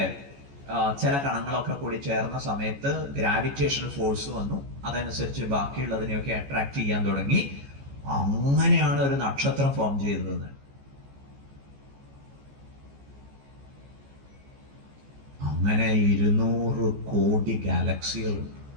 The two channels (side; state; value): left; late; 14 ms